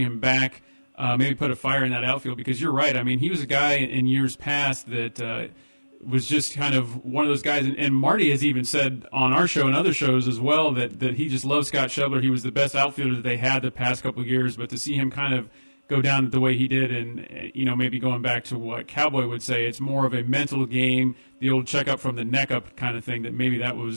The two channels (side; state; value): both; inverted; correlation -1.00